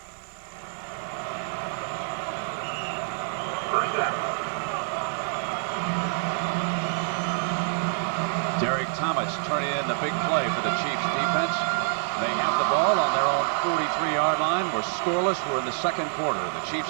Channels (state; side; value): silent; left; digital silence